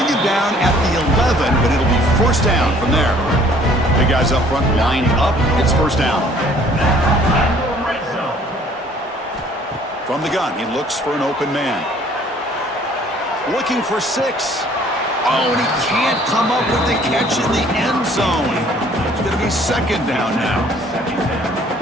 it down at the 11, but it'll be first down from there. Big guys up front lined up. It's first down. From the gun, he looks for an open man. Looking for 6. Oh, and he can't come up with the catch in the end zone. It's going to be second down now.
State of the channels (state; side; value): normal; both; correlation 0.57